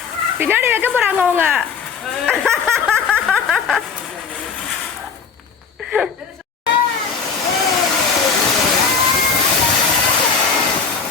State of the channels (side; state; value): right; quieter; 5.7 dB